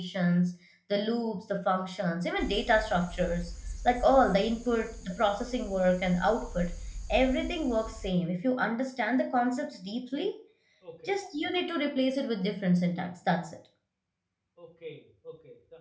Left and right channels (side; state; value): both; identical; correlation 1.00